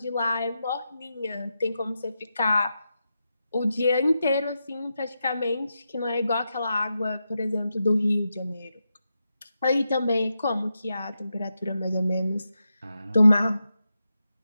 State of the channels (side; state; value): both; inverted; correlation -0.87